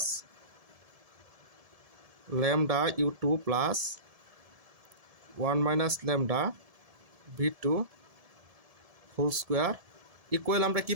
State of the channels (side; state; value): left; late; 1.7 ms